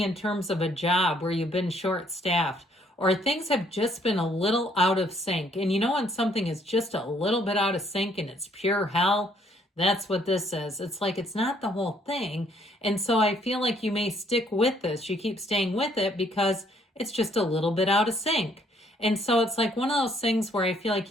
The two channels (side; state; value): both; normal; correlation 0.66